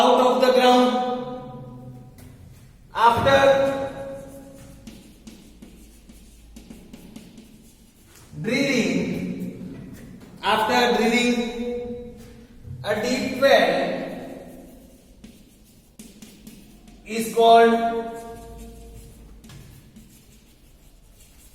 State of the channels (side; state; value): both; identical; correlation 1.00